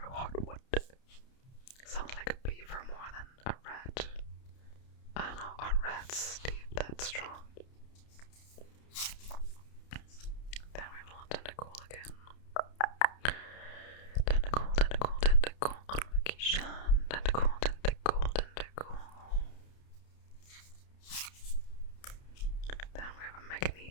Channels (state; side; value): late; right; 30 ms